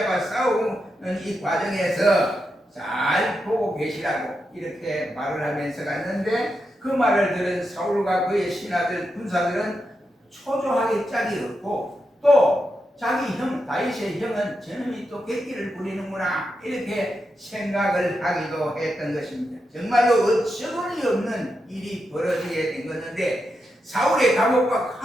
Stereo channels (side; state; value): both; normal; correlation 0.86